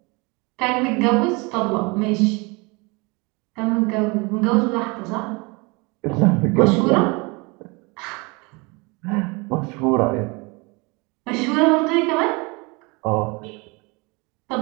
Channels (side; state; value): left; quieter; 27.7 dB